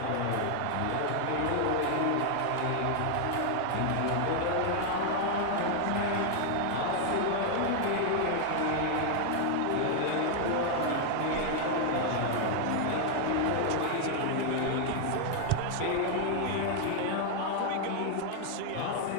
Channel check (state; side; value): different; both; correlation 0.00